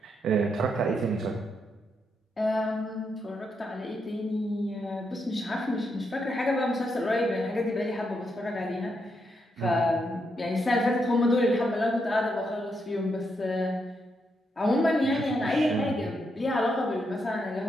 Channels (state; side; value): normal; both; correlation 0.80